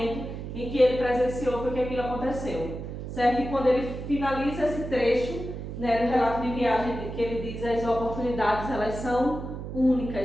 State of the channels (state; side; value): noise; right; hum, 7 dB below the sound